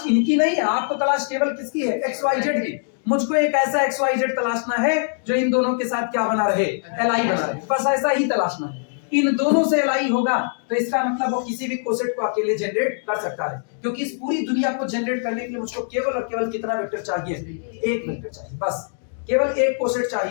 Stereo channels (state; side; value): silent; right; digital silence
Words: इनकी नहीं है, आपको तलाश केवल किसकी है, XYZ की। मुझको एक ऐसा XYZ तलाशना है जो इन दोनों के साथ क्या बना रहे, Li बना रहे, बस ऐसा ही तलाशना है। इन दोनों से Li होगा तो इसका मतलब वो किसी भी कोसेट को अकेले जनरेट कर सकता है, क्योंकि इस पूरी दुनिया को जनरेट करने के लिए मुझको केवल और केवल कितना वेक्टर चाहिए, एक वेक्टर चाहिए, बस केवल एक कोसेट